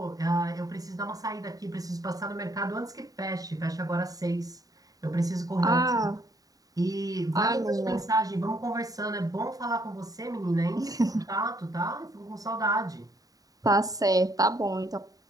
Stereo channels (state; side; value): late; left; 0.18 ms